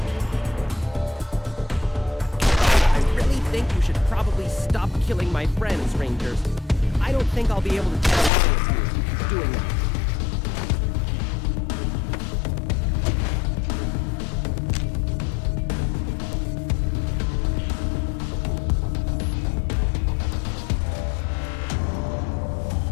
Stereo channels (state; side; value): drops out; right; at 8.3 s